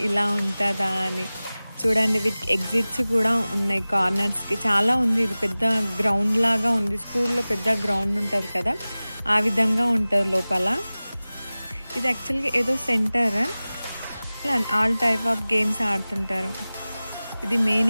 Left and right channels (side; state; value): both; inverted; correlation -0.98